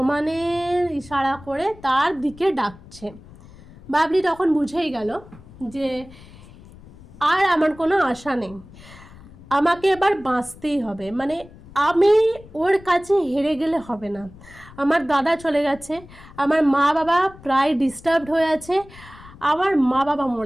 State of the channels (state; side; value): noise; left; rumble, 21 dB below the sound